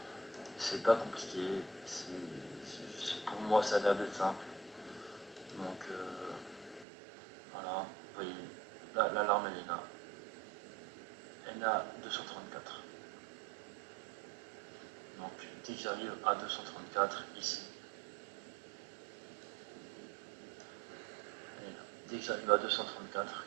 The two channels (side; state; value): left; drops out; at 6.9 s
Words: C'est pas compliqué, pour moi, ça a l'air d'être simple. Donc, voilà, vous voyez, là, l'alarme, elle est là. Elle est à 234. Donc, dès que j'arrive à 234, ici, elle est là. Dès que j'arrive à 234,